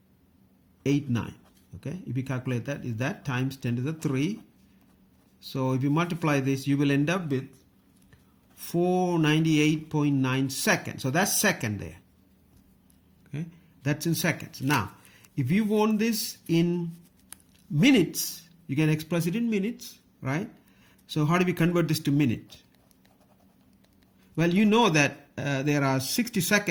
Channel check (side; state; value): both; identical; correlation 1.00